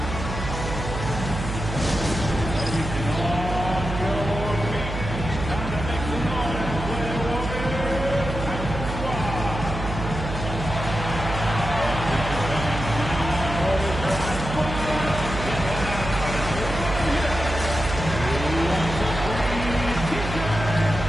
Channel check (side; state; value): right; noise; hum, 6 dB below the sound